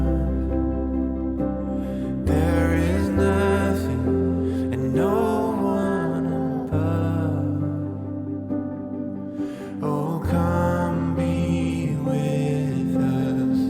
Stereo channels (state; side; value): identical; both; correlation 1.00